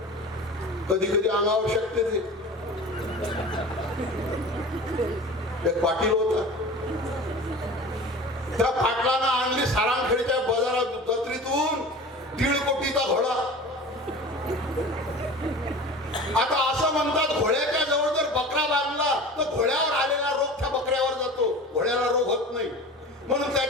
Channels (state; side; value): normal; both; correlation 0.37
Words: कधी कधी अंगावर शकते ते. एक पाटील होता, त्या पाटलानं आणली सारांखेडच्या बाजारात जत्रेतून 1.5 कोटीचा घोडा. आता असं म्हणतात घोड्याच्या जवळ जर बकरा बांधला तर घोड्यावर आलेला रोग त्या बकऱ्यावर जातो, घोड्याला रोग होत नाही. म्हणून